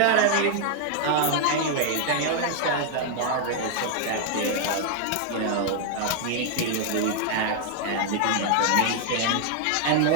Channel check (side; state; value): both; different; correlation 0.00